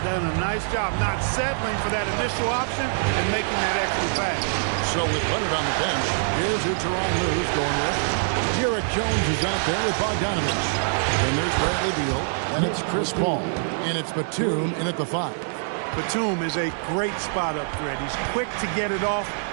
done a nice job not settling for that initial option and making that extra pass. So with Leonard on the bench, here's who Tyronn Lue's going with. Derek Jones is out there with Bogdanovich. And there's Bradley Beal. And it's Chris Paul. And it's Batum in at the 5. Batum is a great spot up threat. He's quick to get it off,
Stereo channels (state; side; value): silent; left; digital silence